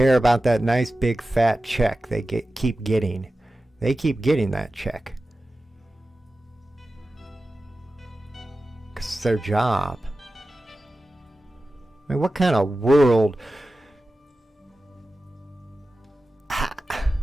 about that nice big fat check they keep getting. They keep getting that check. Because it's their job. I mean, what kind of world...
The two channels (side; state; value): both; normal; correlation 0.94